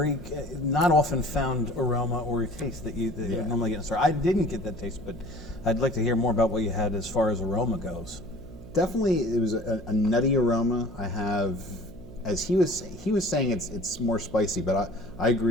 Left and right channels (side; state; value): right; noise; hum, 16 dB below the sound